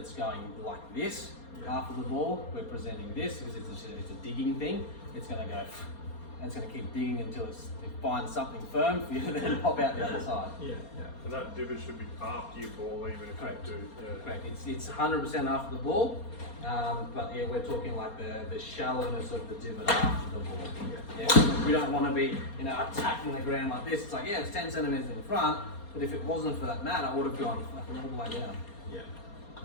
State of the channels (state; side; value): late; right; 4.3 ms